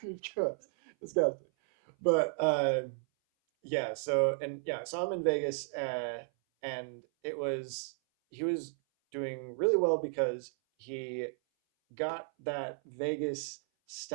disgusting. But I saw him in Vegas, and he was doing really well because he got that Vegas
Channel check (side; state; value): left; silent; 55 dB below the other